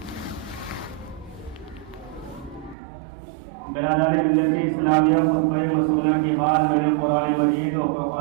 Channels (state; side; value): drops out; left; at 2.8 s